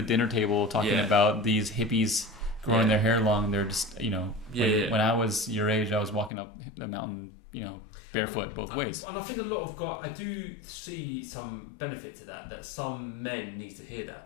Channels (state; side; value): drops out; right; at 6.3 s